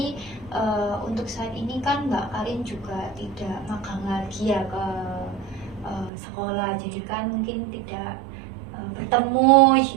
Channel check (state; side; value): drops out; left; at 6.1 s